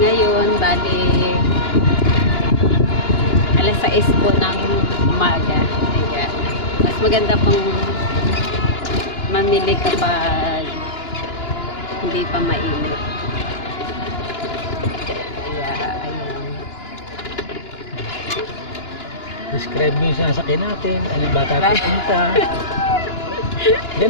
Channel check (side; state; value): right; late; 2.9 ms